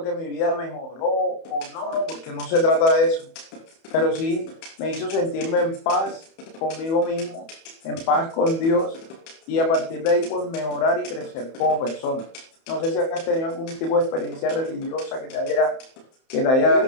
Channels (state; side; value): late; right; 31 ms